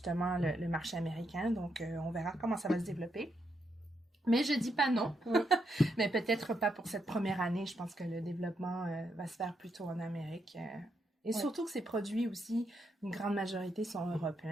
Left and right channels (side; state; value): both; normal; correlation 0.79